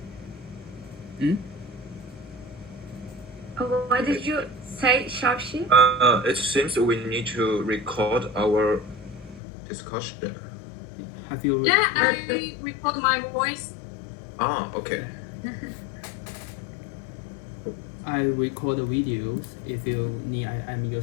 What did you say, Xiaochi? It seems we need to record our discussion. Have you? Yeah, I record my voice. Ah, okay. I record the videos. If you need, I'm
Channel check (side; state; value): right; drops out; at 9.4 s